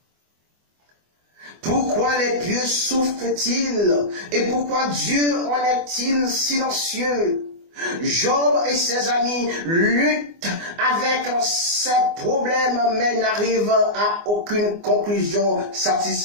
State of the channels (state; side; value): late; left; 24 ms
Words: Pourquoi les pieux souffrent-ils et pourquoi Dieu en est-il silencieux? Job et ses amis luttent avec ses problèmes mais n'arrivent à aucune conclusion